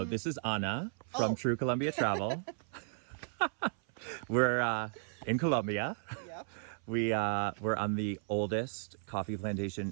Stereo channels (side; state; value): left; silent; 55 dB below the other